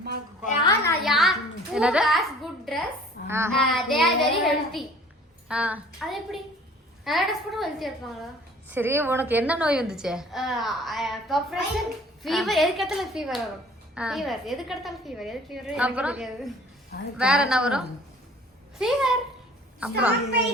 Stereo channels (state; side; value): normal; both; correlation 0.51